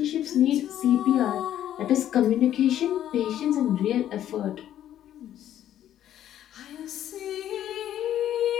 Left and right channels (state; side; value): quieter; right; 11.4 dB